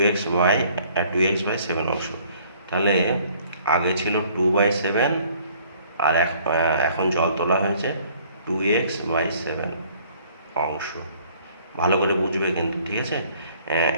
অংশ। তাহলে আগে ছিল 2/7 আর এখন জল তোলা হয়েছে 2x/7 অংশ। ভালো করে বুঝবে কিন্তু, ঠিক আছে।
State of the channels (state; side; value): inverted; both; correlation -0.58